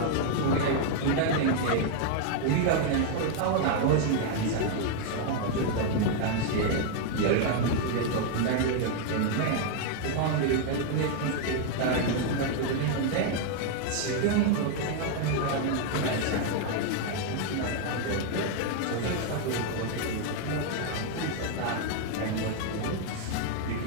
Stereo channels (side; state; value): both; different; correlation 0.00